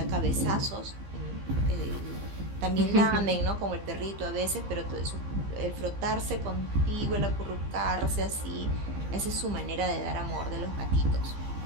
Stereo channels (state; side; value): late; left; 15 ms